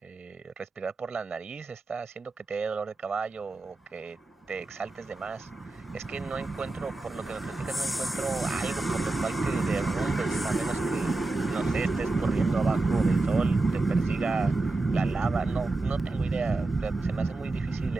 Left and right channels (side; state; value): left; quieter; 3.2 dB